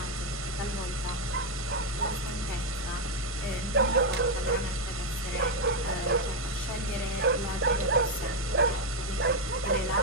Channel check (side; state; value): both; normal; correlation 0.02